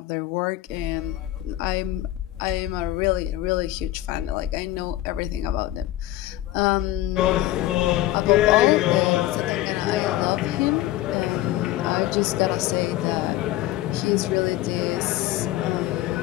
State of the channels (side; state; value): right; quieter; 15.0 dB